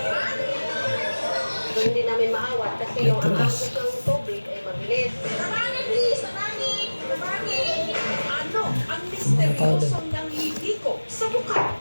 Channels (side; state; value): both; inverted; correlation -1.00